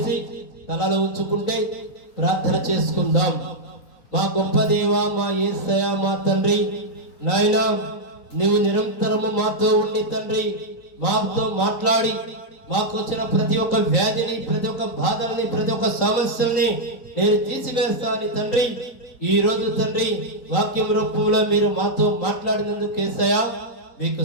తలలో ఉంచుకుంటే ప్రార్థన చేసుకుందాం. మా గొప్ప దేవా, మా యేసయ్య, మా తండ్రి, నాయనా నీవు నిరంతరము మాతో ఉండి తండ్రి, మాతో మాట్లాడి మాకు వచ్చిన ప్రతి ఒక్క వ్యాధిని, ప్రతి ఒక్క బాధల్ని, ప్రతి ఒక్క సమస్యల్ని నేను తీసివేస్తాను తండ్రి. ఈ రోజు తండ్రి వాక్యం రూపంలో మీరు మాతో మాట్లాడినందుకు యేసయ్య మీకు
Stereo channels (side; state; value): right; late; 3.8 ms